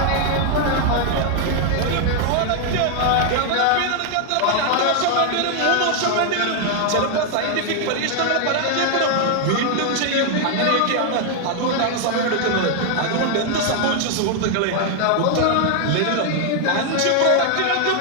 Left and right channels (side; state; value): both; different; correlation 0.00